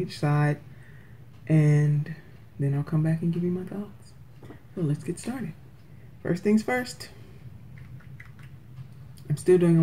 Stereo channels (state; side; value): identical; both; correlation 1.00